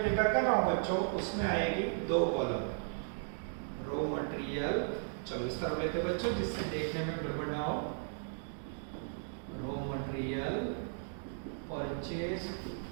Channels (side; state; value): left; silent; digital silence